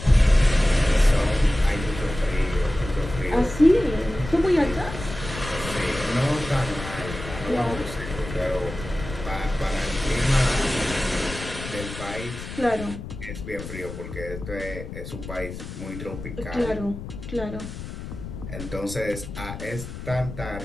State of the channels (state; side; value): noise; left; rumble, 10 dB below the sound